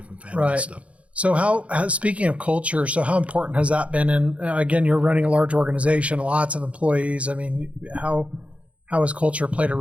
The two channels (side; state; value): left; late; 0.063 ms